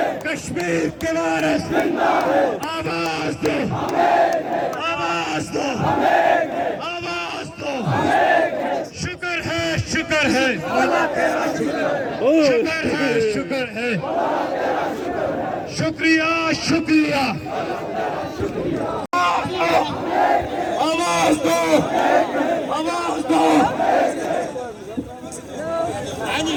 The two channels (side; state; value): both; identical; correlation 1.00